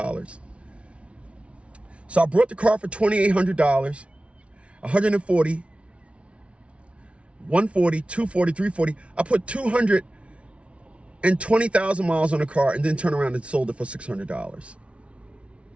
So I brought the car for $2,800, $140, $140, $240, $340. I put 220,000 miles on the car and then turned around and sold it for $600.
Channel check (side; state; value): left; late; 0.061 ms